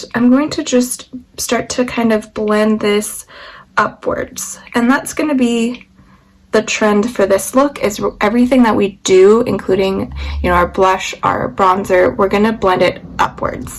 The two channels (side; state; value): both; identical; correlation 1.00